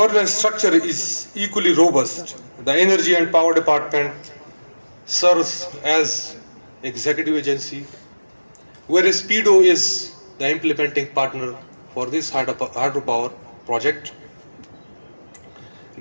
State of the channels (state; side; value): inverted; both; correlation -1.00